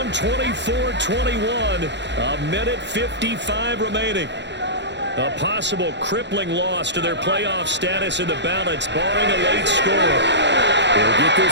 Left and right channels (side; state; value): left; late; 0.52 ms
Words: 24-21, a minute 55 remaining. A possible crippling loss to their playoff status in the balance, barring a late score. He'll get